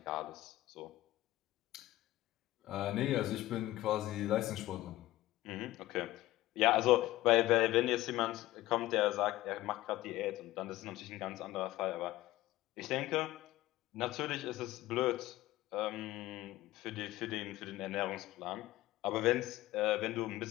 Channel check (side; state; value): right; quieter; 16.5 dB